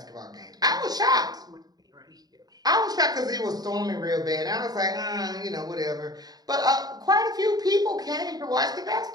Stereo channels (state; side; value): late; left; 0.19 ms